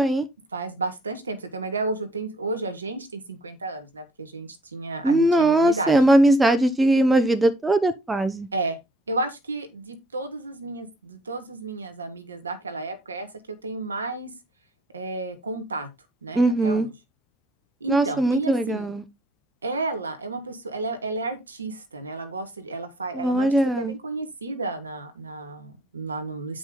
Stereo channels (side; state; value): both; normal; correlation 0.61